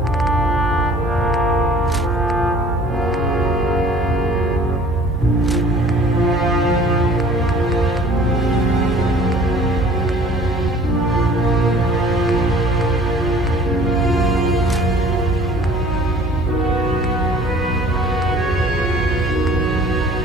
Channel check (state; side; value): normal; both; correlation 0.50